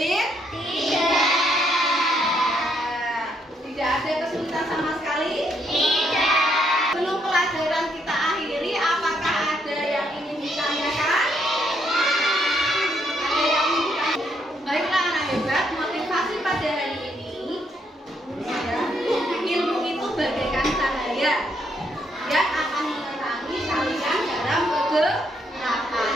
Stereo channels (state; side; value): normal; both; correlation 0.73